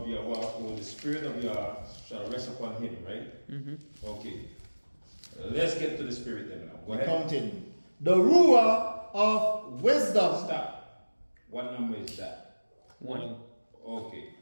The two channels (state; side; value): inverted; both; correlation -1.00